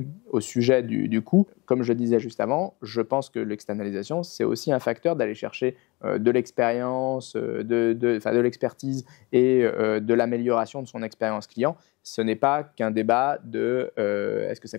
au sujet du coût. Comme je disais juste avant, je pense que l'externalisation, c'est aussi un facteur d'aller chercher de l'expérience, de l'expertise et de l'amélioration de son expérience client. Ce n'est pas qu'un débat de est-ce que ça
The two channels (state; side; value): quieter; right; 24.9 dB